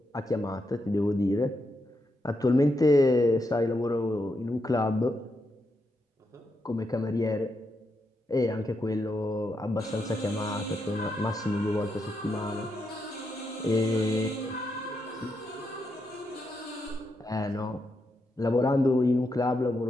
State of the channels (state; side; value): normal; both; correlation 0.82